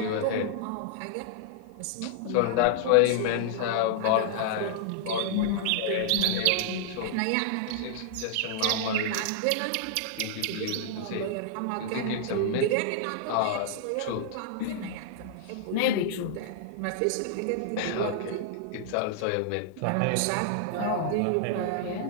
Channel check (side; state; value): both; different; correlation -0.01